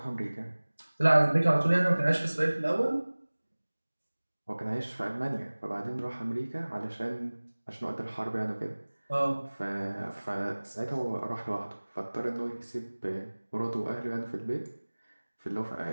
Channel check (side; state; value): both; inverted; correlation -1.00